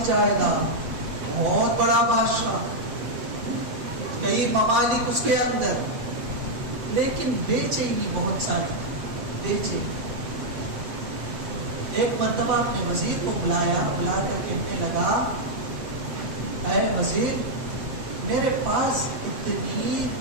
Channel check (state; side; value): late; left; 8.0 ms